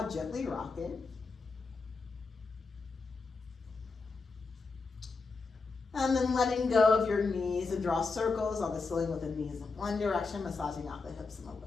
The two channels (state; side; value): quieter; right; 4.2 dB